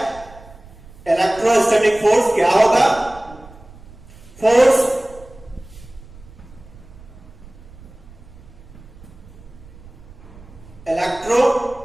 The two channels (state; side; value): noise; right; rumble, 21 dB below the sound